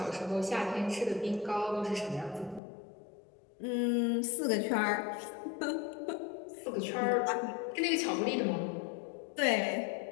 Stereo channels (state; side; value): drops out; right; at 2.6 s